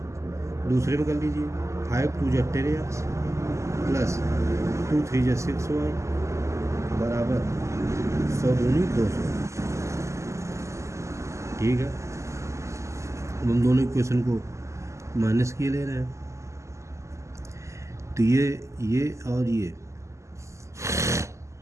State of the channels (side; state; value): left; late; 0.14 ms